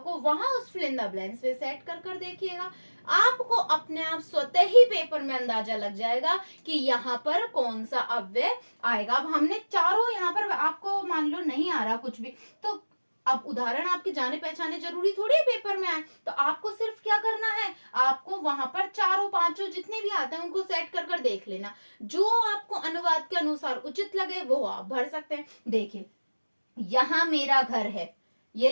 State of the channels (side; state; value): both; inverted; correlation -1.00